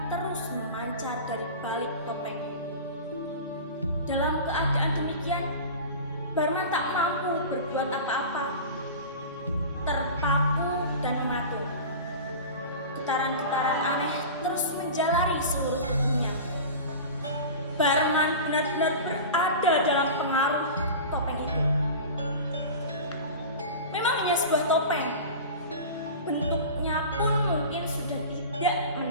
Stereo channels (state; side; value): inverted; both; correlation -0.32